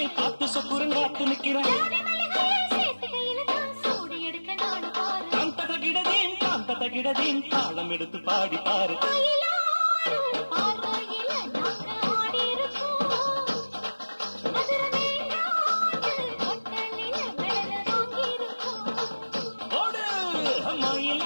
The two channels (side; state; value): both; inverted; correlation -1.00